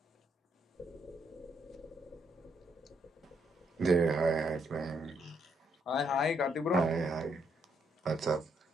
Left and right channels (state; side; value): normal; both; correlation 0.74